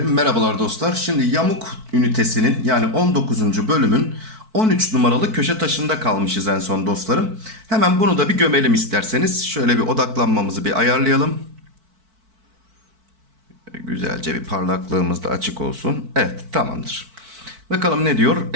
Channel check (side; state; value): left; late; 4.5 ms